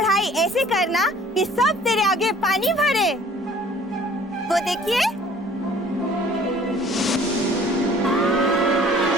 ऐसे करना कि सब तेरे आगे पानी भरे। वो देखिए,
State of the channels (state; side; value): normal; both; correlation 0.52